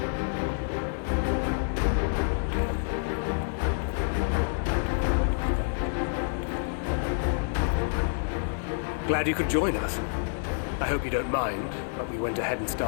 Glad you could join us. I hope you don't mind, but we went ahead and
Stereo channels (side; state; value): right; silent; digital silence